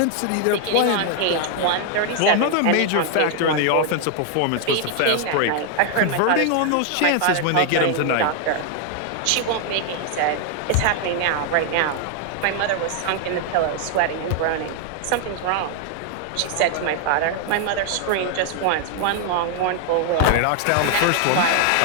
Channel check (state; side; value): different; both; correlation 0.00